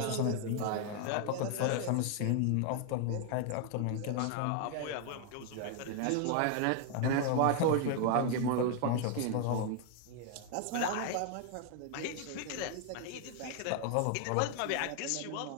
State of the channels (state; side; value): different; both; correlation 0.01